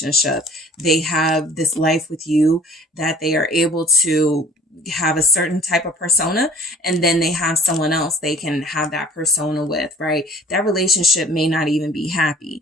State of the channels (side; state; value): both; normal; correlation 0.50